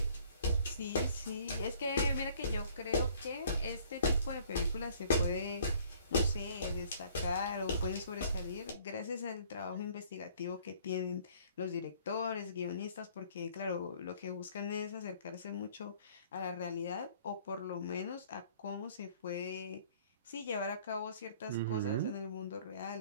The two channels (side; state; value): both; inverted; correlation -0.56